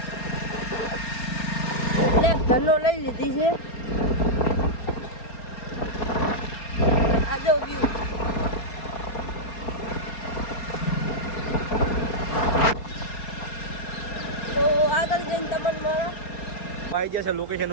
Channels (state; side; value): late; right; 4.4 ms